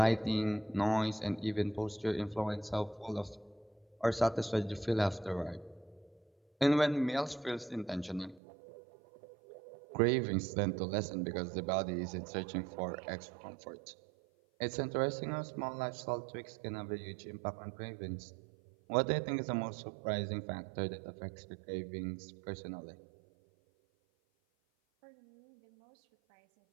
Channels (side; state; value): left; drops out; at 8.4 s